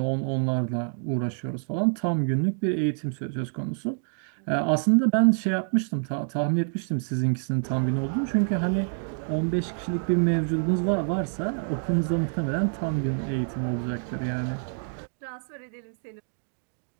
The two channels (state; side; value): silent; left; digital silence